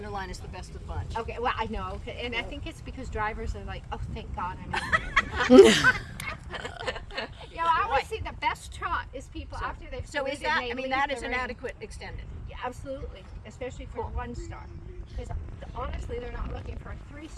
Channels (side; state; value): both; identical; correlation 1.00